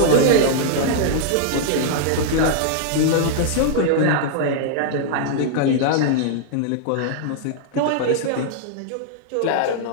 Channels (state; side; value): different; both; correlation -0.01